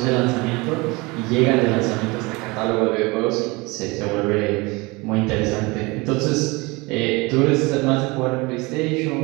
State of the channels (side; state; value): left; quieter; 24.8 dB